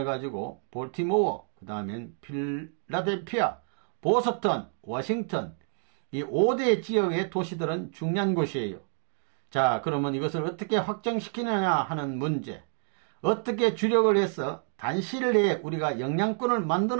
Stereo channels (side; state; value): left; silent; digital silence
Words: 가지고 볼티모어, 그 다음엔 필라델피아, 보스턴, 워싱턴 이 5대 지역의 도시들은 중요한 곳이에요. 자, 그러면 이것을 어떻게 확정시키느냐 하는 문제, 어떻게 주력을 해서 단시일 내에 우리가 영향권을